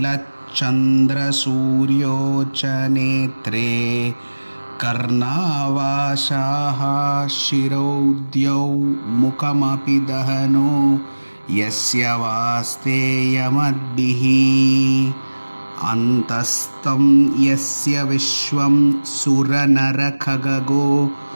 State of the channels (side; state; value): both; inverted; correlation -1.00